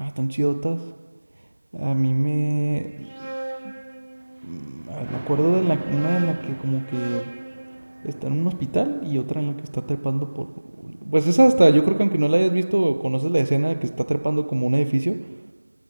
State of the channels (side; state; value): both; inverted; correlation -1.00